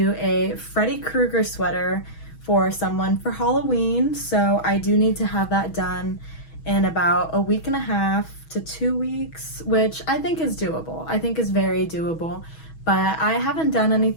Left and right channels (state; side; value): late; right; 6.2 ms